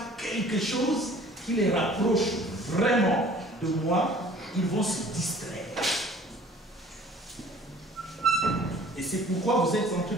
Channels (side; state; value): both; normal; correlation 0.50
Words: quelque chose qui les rapproche vraiment de moi, ils vont se distraire. Et c'est pourquoi vous êtes en train